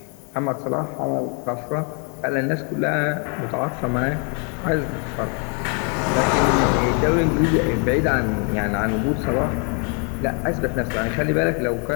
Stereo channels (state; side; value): quieter; right; 38.0 dB